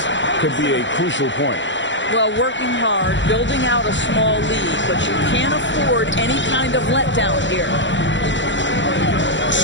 could be a crucial point. Well, working hard, building out a small lead, but you can't afford any kind of letdown here.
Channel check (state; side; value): late; right; 0.54 ms